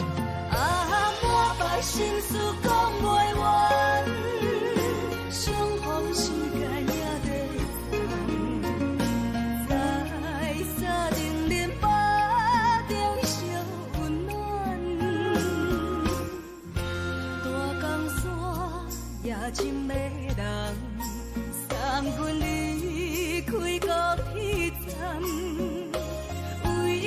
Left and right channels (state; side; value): identical; both; correlation 1.00